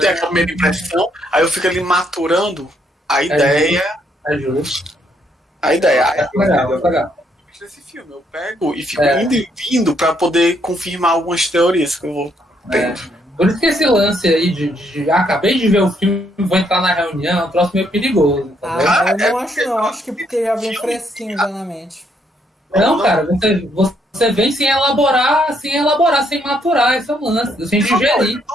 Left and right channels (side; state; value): both; normal; correlation 0.72